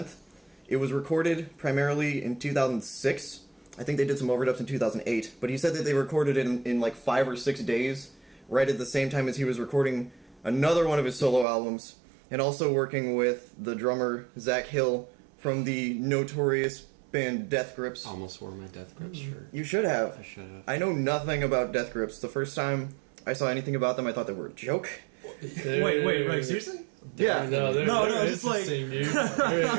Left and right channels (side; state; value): left; drops out; at 11.5 s